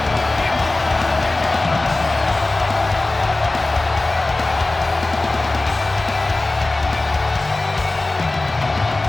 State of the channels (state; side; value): quieter; right; 3.0 dB